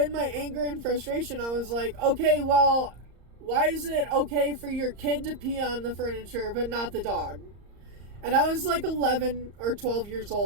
my anger and frustration, I was like, okay, well, why is it okay for your kid to pee on the furniture, but not the dog? And I was like 11 or 12 years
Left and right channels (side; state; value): left; late; 34 ms